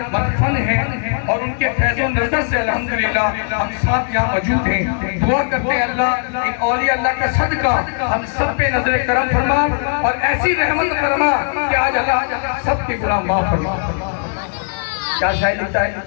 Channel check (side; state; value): right; silent; digital silence